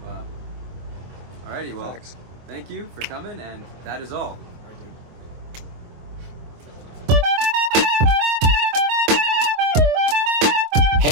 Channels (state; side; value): late; left; 24 ms